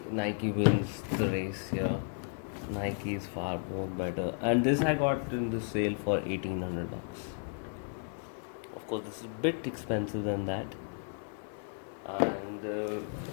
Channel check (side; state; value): right; silent; 55 dB below the other